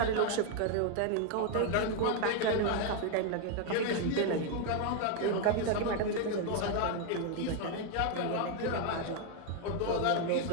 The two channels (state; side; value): different; both; correlation 0.01